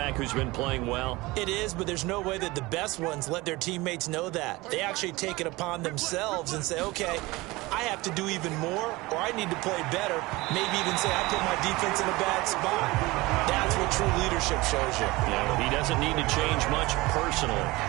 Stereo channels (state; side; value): quieter; left; 21.4 dB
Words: who's been playing well? It is, but there's no way that the best ones let their teammates know that. They actually take it upon themselves and say, okay, I I have to do even more, or I need to play better. Maybe even say I put my defense in a bad spot. That's what true leadership shows you. Yeah, well, he doesn't need to change much personally.